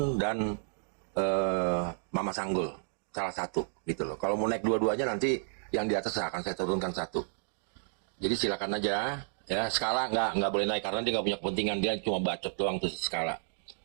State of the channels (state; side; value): silent; left; digital silence